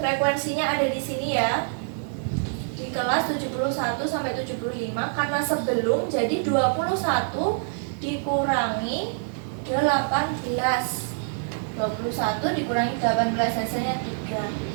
ada di sini ya. Di kelas 71 sampai 75 karena sebelum jadi 21 dikurangi 18. 21 dikurangi 18 hasilnya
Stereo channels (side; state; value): left; silent; 61 dB below the other